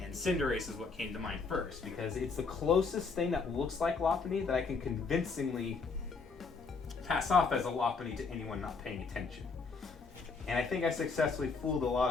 And Cinderace is what came to mind first, because it's the closest thing that looks like Lopunny that I can convincingly pass off as a Lopunny to anyone not paying attention. And I think I successfully fooled a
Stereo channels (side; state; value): right; quieter; 4.7 dB